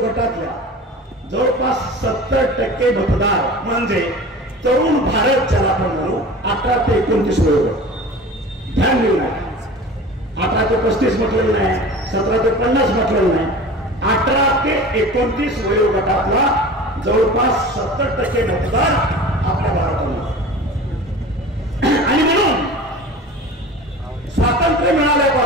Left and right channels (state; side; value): normal; both; correlation 0.37